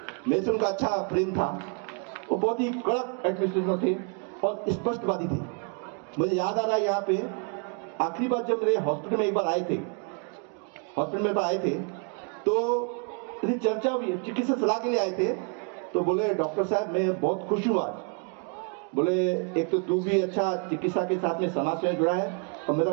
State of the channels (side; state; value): left; quieter; 37.4 dB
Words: मेरे से उनका अच्छा प्रेम था। वो बहुत ही कड़क एडमिनिस्ट्रेटर थे और स्पष्टवादी थे। मुझे याद आ रहा है, यहाँ पे आखिरी बार जब मेरे हॉस्पिटल में एक बार आए थे, तो चर्चा हुई, चिकित्सा सलाह के लिए आए थे, तो बोले डॉक्टर साहब मैं बहुत खुश हूँ आज। बोले एक तो तू भी अच्छा चिकित्सा के साथ में समाज से जुड़ा है, और मेरा